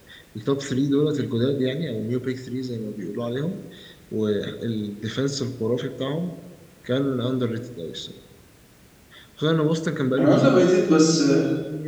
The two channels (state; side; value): identical; both; correlation 1.00